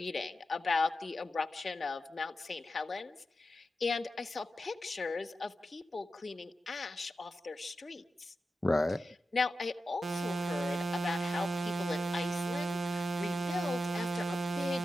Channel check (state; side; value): normal; both; correlation 0.91